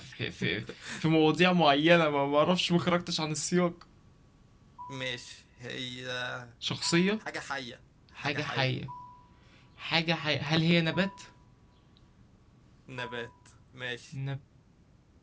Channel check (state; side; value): identical; both; correlation 1.00